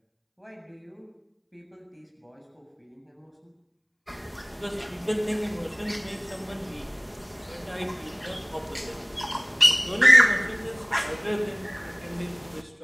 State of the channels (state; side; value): identical; both; correlation 1.00